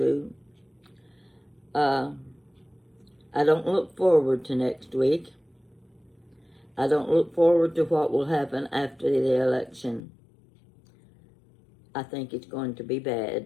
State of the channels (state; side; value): drops out; right; at 10.0 s